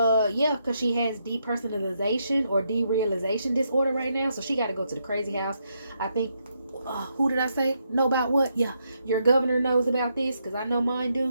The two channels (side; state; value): both; inverted; correlation -0.79